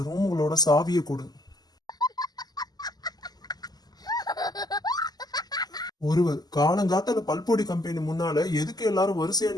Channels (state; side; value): late; right; 0.20 ms